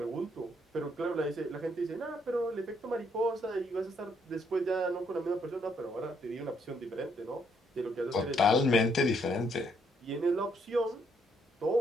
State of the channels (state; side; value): normal; both; correlation 0.71